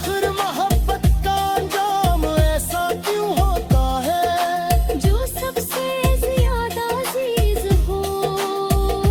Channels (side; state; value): both; identical; correlation 1.00